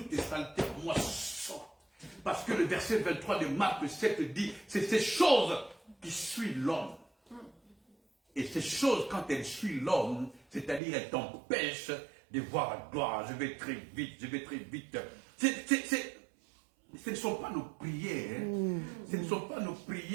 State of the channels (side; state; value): left; drops out; at 10.8 s